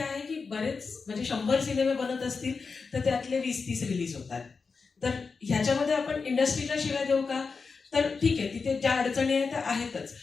आहे की बरेच म्हणजे 100 सिनेमे बनत असतील तर त्यातले 20-30 रिलीज होतात. तर ह्याच्यामध्ये आपण इंडस्ट्रीला शिवाय देऊ का? तर ठीक आहे, तिथे ज्या अडचणी आहेत त्या आहेतच.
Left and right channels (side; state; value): right; quieter; 4.8 dB